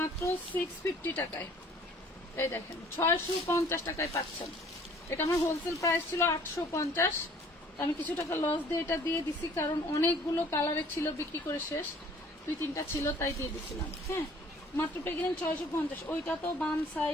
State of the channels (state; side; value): normal; both; correlation 0.54